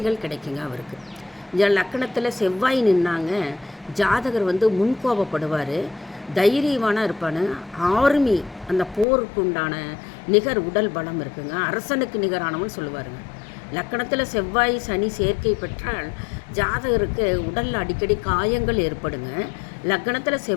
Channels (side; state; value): right; drops out; at 9.1 s